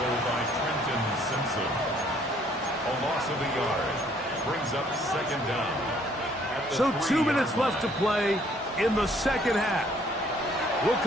by Trenton Simpson. A loss of a yard. Brings up second down. So 2 minutes left to play in the second half. We'll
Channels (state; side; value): normal; both; correlation 0.62